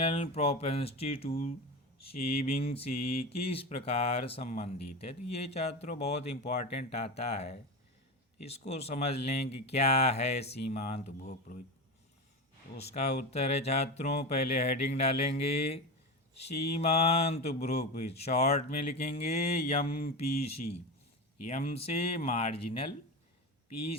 प्रोपेंसिटी टू सेविंग से किस प्रकार संबंधित है। तो ये छात्रों बहुत इम्पोर्टेंट आता है, इसको समझ लें कि क्या है सीमांत उपभोग प्रवृत्ति। तो उसका उत्तर है छात्रों, पहले हेडिंग डालेंगे सीमांत उपभोग प्रवृत्ति, शॉर्ट में लिखेंगे एम पी सी, एम से मार्जिनल, पी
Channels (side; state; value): both; normal; correlation 0.21